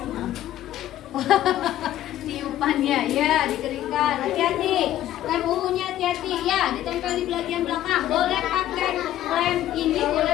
Tiupannya ya dikeringkan. Hati-hati. Lem ungunya hati-hati ya, ditempel di bagian belakang. Boleh pakai lem ini,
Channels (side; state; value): right; quieter; 12.9 dB